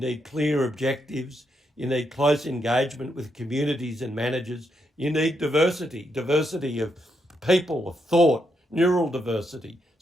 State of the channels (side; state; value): both; normal; correlation 0.80